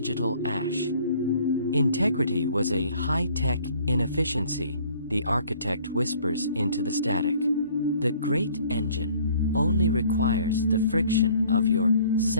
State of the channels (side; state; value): both; inverted; correlation -0.56